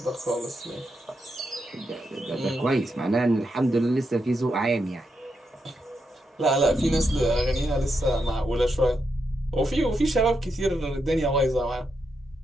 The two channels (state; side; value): normal; both; correlation 0.83